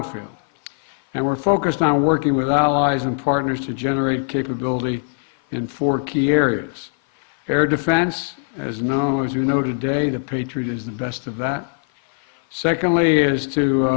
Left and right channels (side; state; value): right; silent; 56 dB below the other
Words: And we're focused on working with allies and partners to generate capability in 4 key areas. Air defense, as we know today, the Patriot is the best of that. Secondly is to,